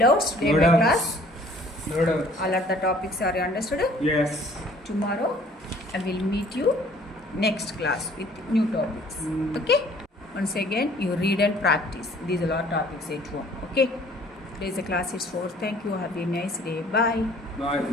today No my doubts. class? No doubts. All of the topics are you understood? Yes. Tomorrow I will meet you next class with new topics. Okay? Once again you read and practice. These are all topics at home. Okay? Today's class is over. Thank you. Have a nice day. Bye. Bye.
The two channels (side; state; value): both; normal; correlation 0.55